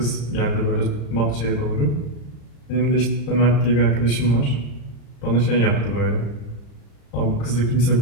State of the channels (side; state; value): right; late; 35 ms